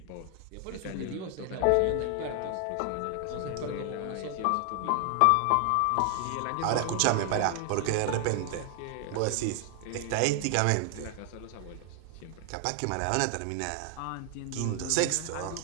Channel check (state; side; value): different; both; correlation 0.00